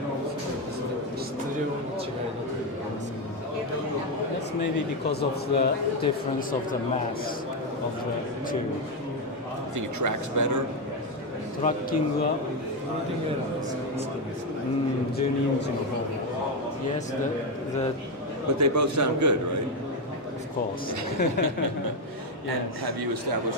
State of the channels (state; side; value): normal; both; correlation 0.07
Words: That's maybe because of the difference of the mass of the two. I think it tracks better. Tracking は12インチの方で。Yes, But they both sound good, right? Of course. And have you